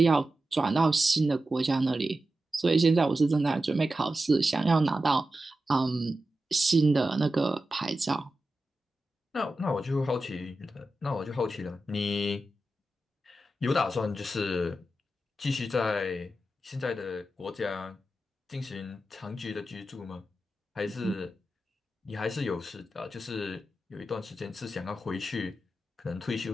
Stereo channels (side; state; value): both; normal; correlation 0.91